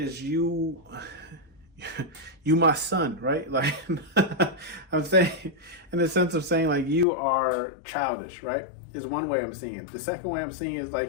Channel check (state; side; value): drops out; right; at 7.1 s